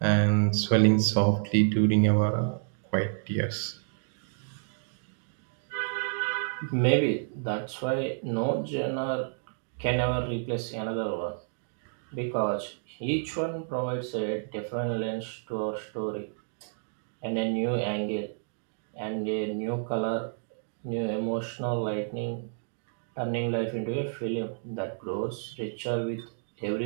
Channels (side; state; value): left; silent; digital silence